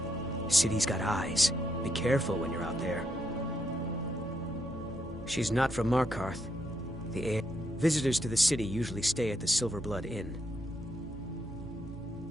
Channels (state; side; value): normal; both; correlation 0.78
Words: City's got eyes. Be careful when you're out there. She's not from Markarth. Visitors to the city usually stay at the Silverblood Inn.